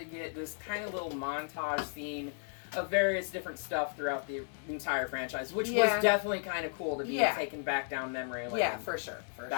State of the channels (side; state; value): right; silent; digital silence